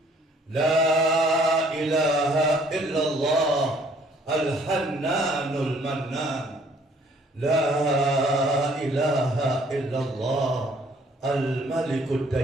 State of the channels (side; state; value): both; normal; correlation 0.60